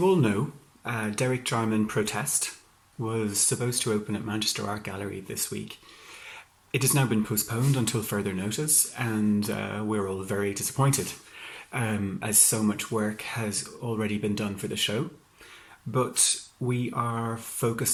all know, Derek Jarman Protest was supposed to open at Manchester Art Gallery this week. It has now been postponed until further notice, and we're all very disappointed, as so much work has already been done for the show. But we are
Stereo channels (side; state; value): both; identical; correlation 1.00